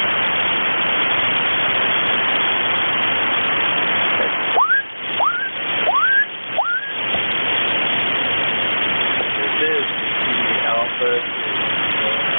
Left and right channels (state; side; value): inverted; both; correlation -1.00